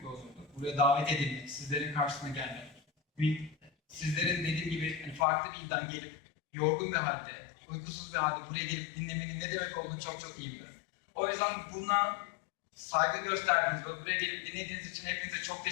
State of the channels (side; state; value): right; drops out; at 5.2 s